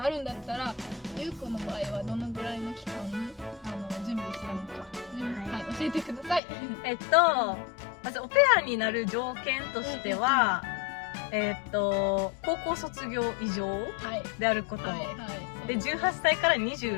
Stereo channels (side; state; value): right; drops out; at 6.4 s